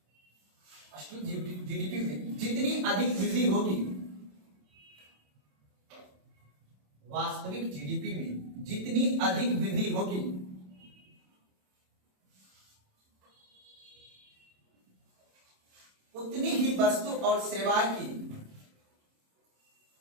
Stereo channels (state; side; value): late; left; 27 ms